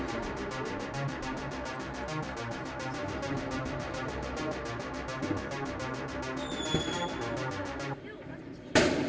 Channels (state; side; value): identical; both; correlation 1.00